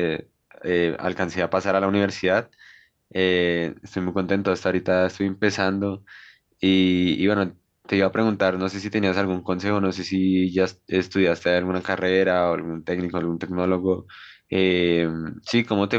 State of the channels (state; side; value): identical; both; correlation 1.00